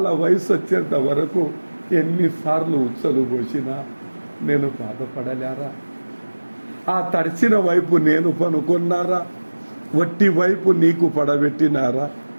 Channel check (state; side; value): inverted; both; correlation -1.00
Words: వయసు వచ్చేంత వరకు ఎన్నిసార్లు ఉచ్చలు పోసినా నేను బాధపడలేరా? ఆ తడిచిన వైపు నేను పనుకున్నారా? వట్టి వైపు నీకు పడబెట్టినారా?